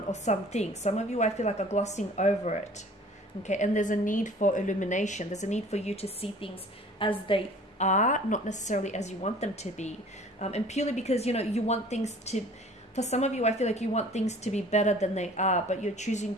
or something. Some of you, I feel like, are glossing over it. Okay, and there's a need for illumination. There's a need for you to see things as they are, not necessarily as you want them to be. And purely because, you know, you want things to, for some of you, I feel like you want things to be better than they are, but you're choosing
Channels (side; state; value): both; normal; correlation 0.49